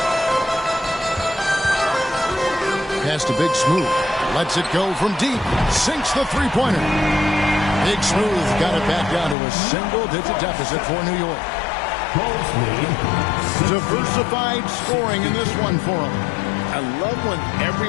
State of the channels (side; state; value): right; drops out; at 9.3 s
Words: Pass to Big Smooth. Lets it go from deep. Sinks the three-pointer. Big Smooth got it back down to a single-digit deficit for New York. Diversified scoring in this one for him. I love when